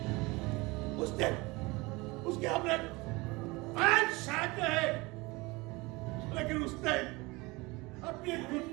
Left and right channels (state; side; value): quieter; left; 23.7 dB